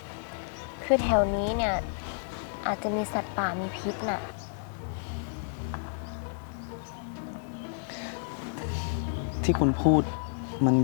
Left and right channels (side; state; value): right; silent; 57 dB below the other